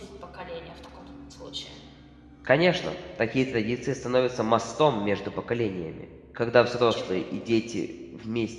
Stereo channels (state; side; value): identical; both; correlation 1.00